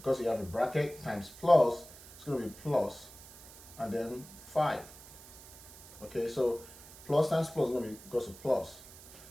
you have a bracket, times plus, it's going to be plus, and then 5. Okay, so plus times plus is going to be equals to plus.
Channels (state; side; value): noise; right; hiss, 18 dB below the sound